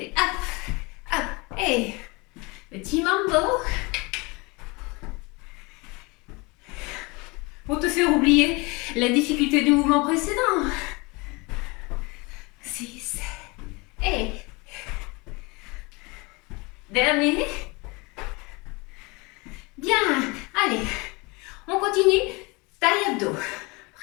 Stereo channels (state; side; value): quieter; right; 26.7 dB